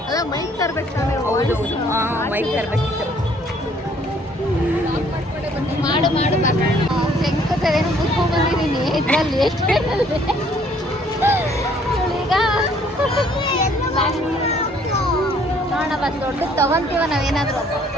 ಅದ ಮೈಕ್ ತರ್ಬೇಕು ತಾನೆ. ಹೌದು ಮೈಕ್ ತರ್ಬೇಕಿತ್ತು. ಮಾಡು ಶಂಕತೇನು ಮುಚ್ಕೊಂಡ್ ಬಂದಿದ್ದೀನಿ. ಇದ್ರಲ್ಲಿ ಎಷ್ಟು ಈಗ ನೋಡೋಣ ಬಸ್ ದೊಡ್ಡ ತಗೊಂತೀವ ನಾವೇನಾದ್ರು.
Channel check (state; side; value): normal; both; correlation 0.61